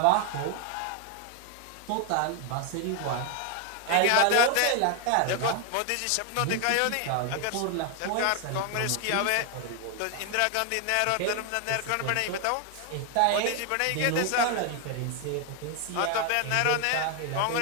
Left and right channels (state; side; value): different; both; correlation 0.00